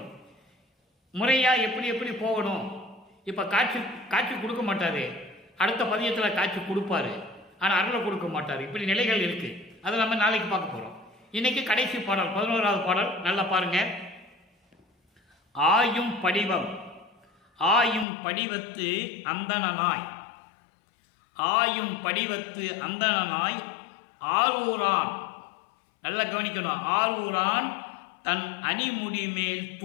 முறையா எப்படி எப்படி போகணும். இப்ப காட்சி கொடுக்க மாட்டாரு, அடுத்த பதியத்தில் காட்சி கொடுப்பாரு, ஆனால் அருளை கொடுக்க மாட்டார். இப்படி நிலைகள் இருக்கு. அதை நம்ம நாளைக்கு பார்க்க போறோம். இன்னைக்கு கடைசி பாடல் 11வது பாடல். நல்லா பாருங்க. ஆயும் படிவம் ஆயும் படிவத்து அந்தணனாய், ஆயும் படிவத்து அந்தணனாய் ஆரூரான். நல்லா கவனிக்கணும். ஆரூரான் தன் அணிமுடி மேல்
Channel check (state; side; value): drops out; right; at 18.1 s